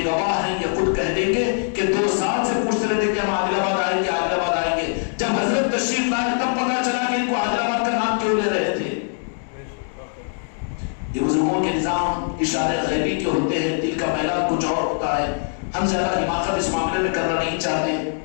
گواہ ہیں، یہ خود کہہ دیں گے کہ 2 سال سے پوچھتے رہتے کہ ہم عادل آباد آئیں گے، عادل آباد آئیں گے، جب حضرت تشریف لائے تب پتہ چلا کہ ان کو عادل آباد کا نام کیوں لے رہے تھے۔ یہ بزرگوں کے نظام اشارے غیبی کے ہوتے ہیں، دل کا میلان کچھ اور ہوتا ہے. ہم زیادہ حماقت اس معاملے میں کرنا نہیں چاہتے،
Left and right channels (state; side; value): silent; right; 64 dB below the other